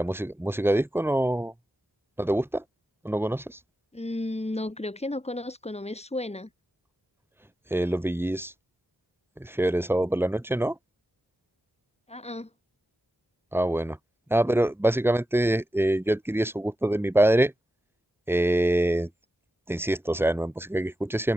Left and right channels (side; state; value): both; normal; correlation 0.91